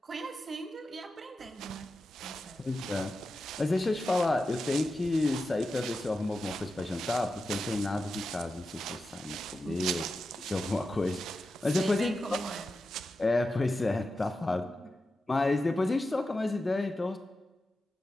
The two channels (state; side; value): normal; both; correlation 0.90